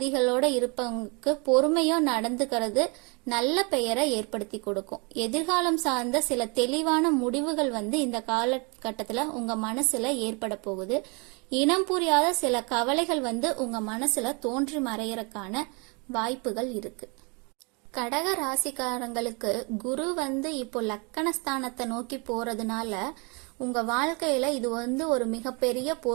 இருப்பவங்களுக்கு பொறுமையோ நடந்துக்கிறது நல்ல பெயரை ஏற்படுத்தி கொடுக்கும். எதிர்காலம் சார்ந்த சில தெளிவான முடிவுகள் வந்து இந்த காலகட்டத்துல உங்க மனசுல ஏற்பட போகுது. இனம் புரியாத சில கவலைகள் வந்து உங்க மனசுல தோன்றி மறையறதுக்கான வாய்ப்புகள் இருக்கு. கடக ராசிக்காரங்களுக்கு குரு வந்து இப்போ லக்கணஸ்தானத்தை நோக்கி போறதுனால உங்க வாழ்க்கையில இது வந்து ஒரு மிகப்பெரிய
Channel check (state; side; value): quieter; left; 32.1 dB